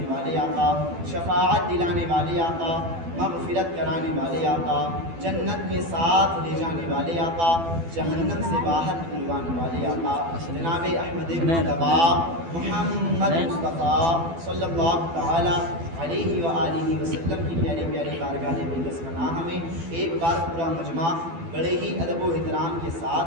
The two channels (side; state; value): left; late; 12 ms